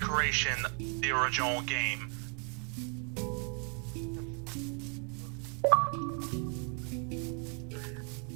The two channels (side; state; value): left; quieter; 39.0 dB